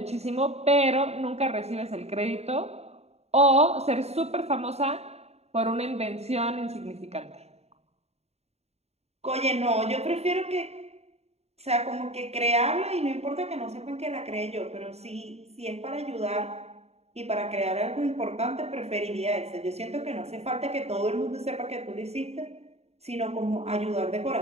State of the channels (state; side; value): late; left; 0.31 ms